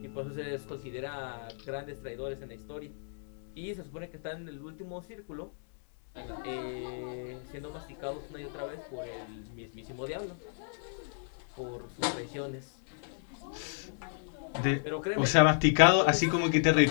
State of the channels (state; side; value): silent; right; 56 dB below the other